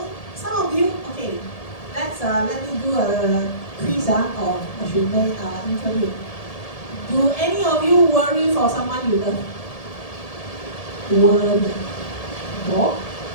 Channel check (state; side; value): late; right; 1.7 ms